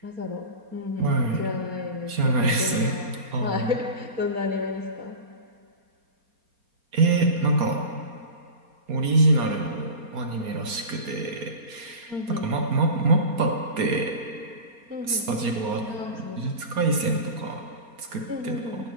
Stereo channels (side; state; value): left; late; 4.3 ms